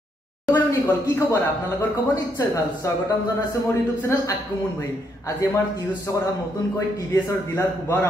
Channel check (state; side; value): normal; both; correlation 0.75